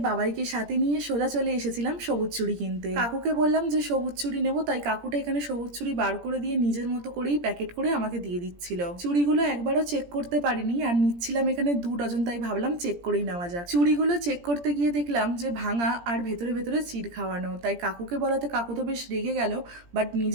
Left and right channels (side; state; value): left; late; 17 ms